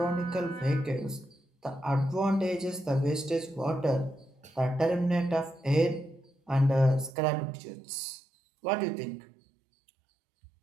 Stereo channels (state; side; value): drops out; left; at 7.2 s